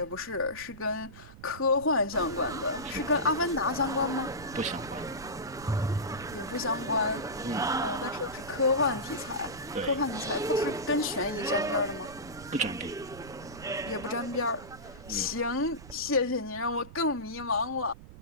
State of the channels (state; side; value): noise; right; rumble, 17 dB below the sound